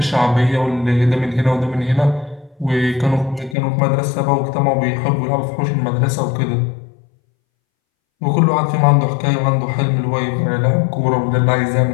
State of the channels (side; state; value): right; drops out; at 3.6 s